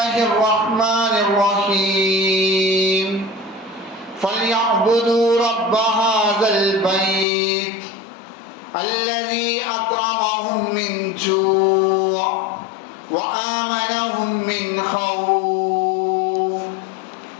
الرحمن الرحيم. فليعبدوا رب هذا البيت الذي أطعمهم من جوع وآمنهم من خوف.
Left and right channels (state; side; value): drops out; right; at 7.2 s